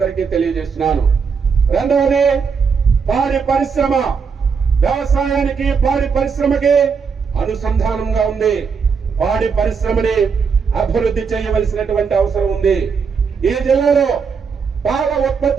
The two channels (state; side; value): quieter; left; 5.8 dB